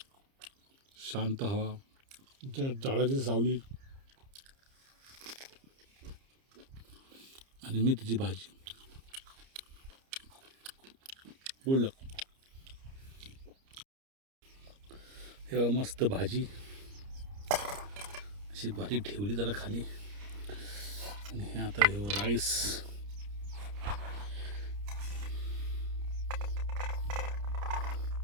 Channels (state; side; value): late; left; 30 ms